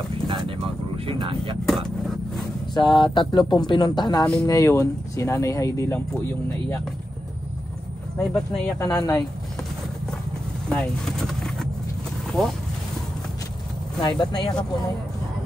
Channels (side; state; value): both; normal; correlation 0.89